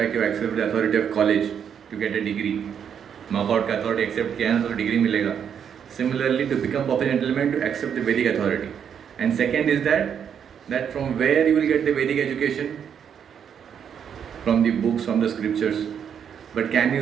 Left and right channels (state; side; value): quieter; left; 8.0 dB